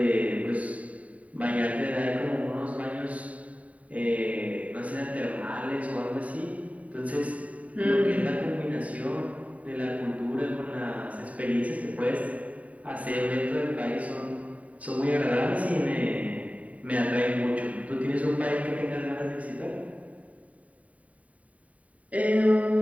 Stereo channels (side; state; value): left; late; 0.068 ms